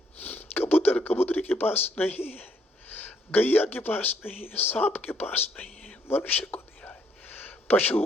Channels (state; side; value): normal; both; correlation 0.70